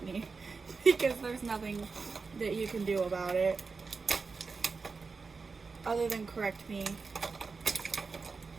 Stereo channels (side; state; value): left; quieter; 4.6 dB